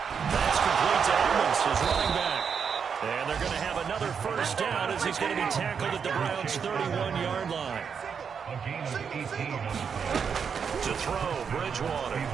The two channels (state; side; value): quieter; left; 6.6 dB